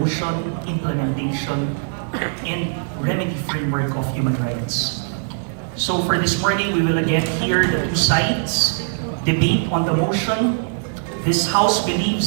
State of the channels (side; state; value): left; silent; digital silence